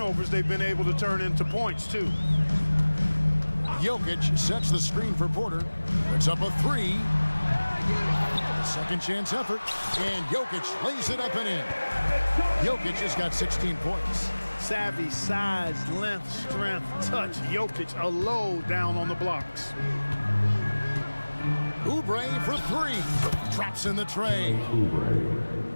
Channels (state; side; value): inverted; both; correlation -1.00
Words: they've been able to turn into points, too. Jokic sets the screen for Porter. Puts up a 3. Second chance effort. And Jokic lays it up and in. Jokic has got 16 points. Savvy, size, length, strength, touch. Jokic a low down on the blocks. Oubre for 3. Drops in the tray.